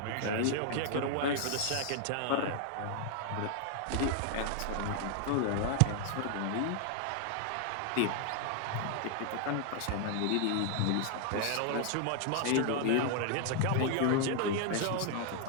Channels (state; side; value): different; both; correlation 0.00